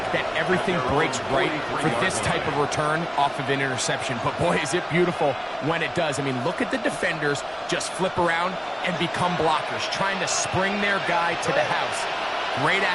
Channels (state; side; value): identical; both; correlation 1.00